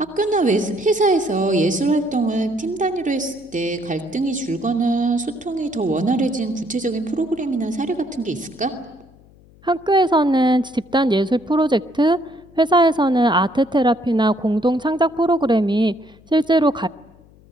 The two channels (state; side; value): noise; left; hum, 27 dB below the sound